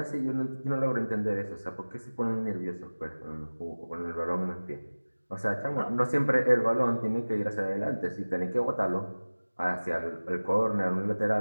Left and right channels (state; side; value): inverted; both; correlation -1.00